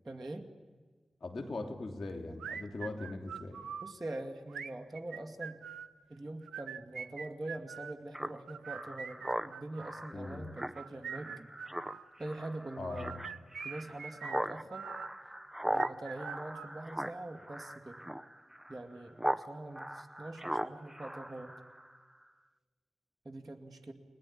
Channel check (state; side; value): normal; both; correlation 0.94